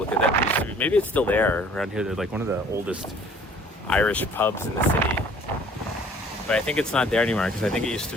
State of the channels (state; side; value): normal; both; correlation 0.54